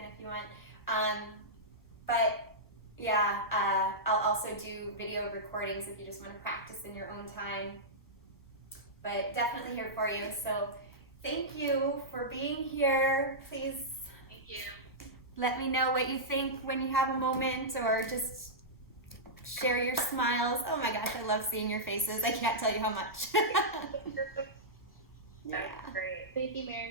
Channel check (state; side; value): normal; both; correlation -0.12